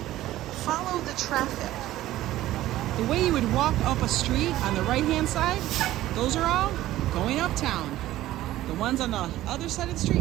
Follow the traffic. The way you would walk up a street on the right-hand side, those are all going uptown. The ones on the other side of the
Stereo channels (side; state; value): left; quieter; 14.9 dB